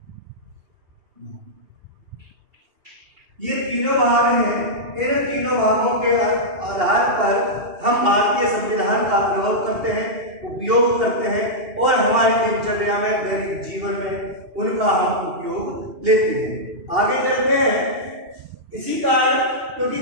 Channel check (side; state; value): left; late; 2.8 ms